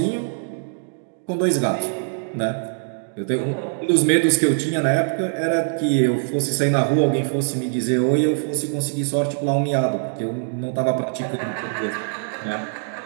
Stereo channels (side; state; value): left; silent; digital silence